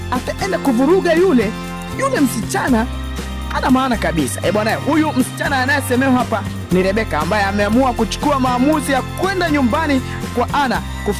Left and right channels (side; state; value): both; identical; correlation 1.00